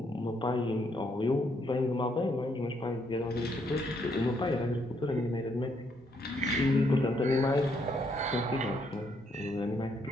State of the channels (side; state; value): both; normal; correlation 0.73